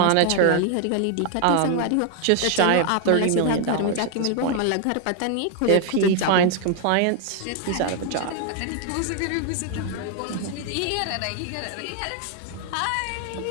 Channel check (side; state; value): both; different; correlation 0.00